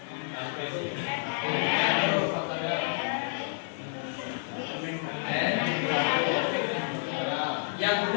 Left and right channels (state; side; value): silent; right; digital silence